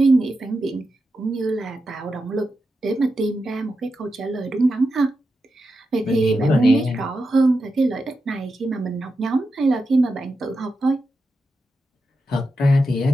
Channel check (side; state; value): both; normal; correlation 0.89